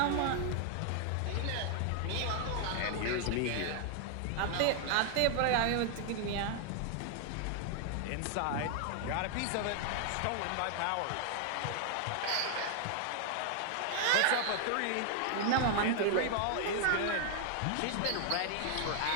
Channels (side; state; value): both; different; correlation 0.00